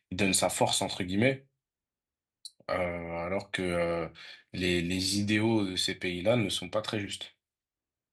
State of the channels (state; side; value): identical; both; correlation 1.00